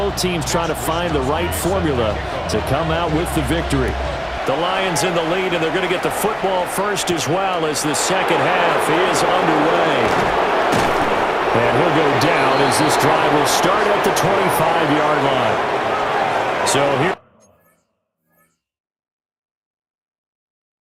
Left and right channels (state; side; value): identical; both; correlation 1.00